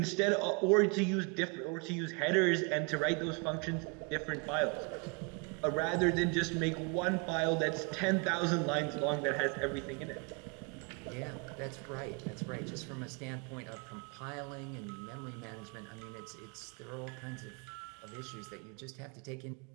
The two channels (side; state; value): left; quieter; 33.2 dB